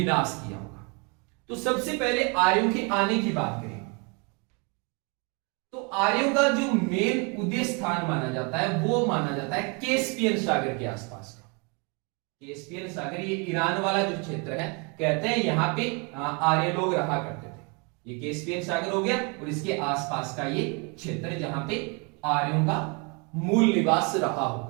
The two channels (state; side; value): quieter; left; 32.6 dB